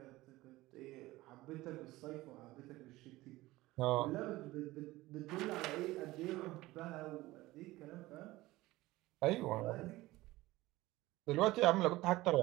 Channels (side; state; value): left; quieter; 18.5 dB